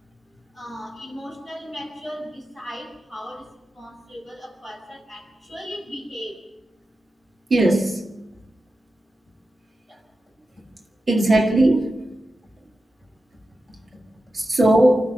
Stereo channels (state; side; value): normal; both; correlation 0.91